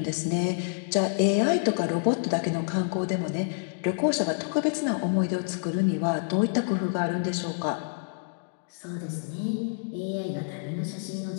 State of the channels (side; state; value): right; silent; digital silence